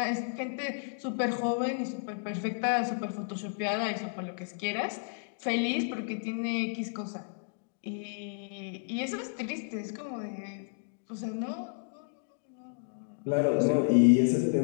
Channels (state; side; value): silent; right; digital silence